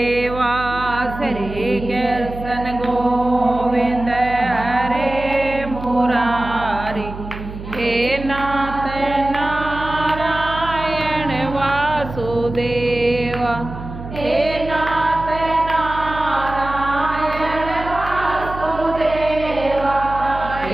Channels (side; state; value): right; noise; hum, 11 dB below the sound